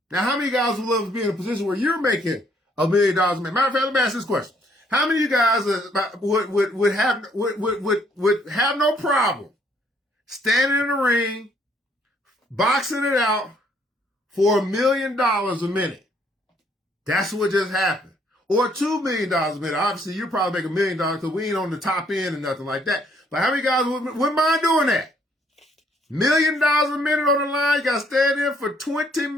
Now, how many guys would love to be in a position where you're making $1 million a minute? Matter of fact, let me ask this question. How many of you guys would have no problem standing in the ring, boxing it out for $1 million a minute? That's what just happened. Or $2 million a minute. Obviously, you probably make $1 million because we ain't on the top end and nothing like that. But how many guys wouldn't mind doing that? $1 million a minute on the line. You got to stand in for 20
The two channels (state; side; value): normal; both; correlation 0.67